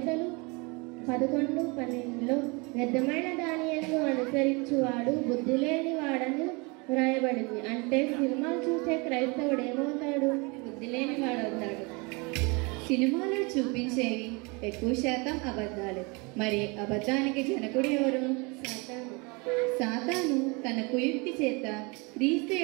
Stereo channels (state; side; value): quieter; left; 28.9 dB